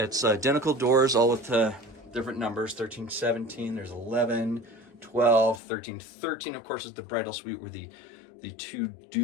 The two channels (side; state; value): right; drops out; at 5.6 s